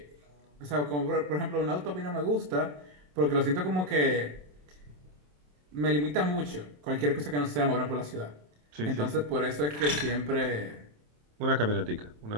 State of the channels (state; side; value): late; left; 27 ms